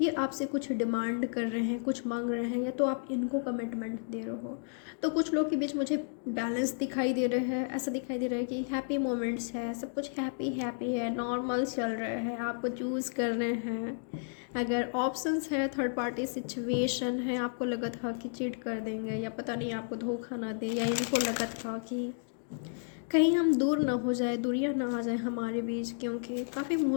ये आपसे कुछ डिमांड कर रहे हैं, कुछ मांग रहे हैं, या तो आप इनको कमिटमेंट दे रहे हो। तो कुछ लोग के बीच मुझे बैलेंस दिखाई दे रहा है, ऐसा दिखाई दे रहा है कि हैप्पी मोमेंट्स है, सब कुछ हैप्पी हैप्पी है, नॉर्मल चल रहा है, आपको चूज़ कर रहे हैं। अगर ऑप्शंस है, थर्ड पार्टी सिचुएशन है, आपको लगा था कि चीट कर देंगे या पता नहीं आपको धोखा ना दे, या इनको लगा था कि कहीं हम दूर ना हो जाए, दूरियां ना आ जाए हमारे बीच, क्योंकि काफ़ी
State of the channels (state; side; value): silent; right; digital silence